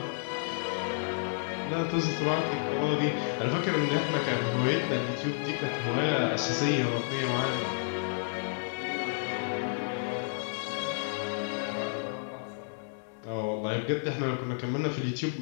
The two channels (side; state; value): right; silent; digital silence